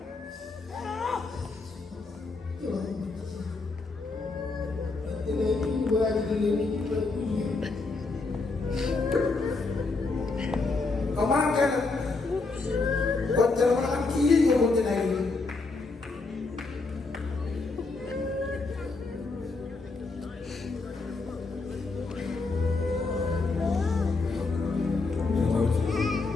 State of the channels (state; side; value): quieter; right; 3.7 dB